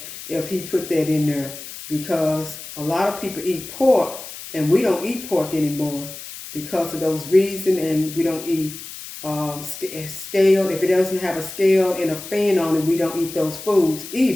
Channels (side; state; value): left; noise; hiss, 12 dB below the sound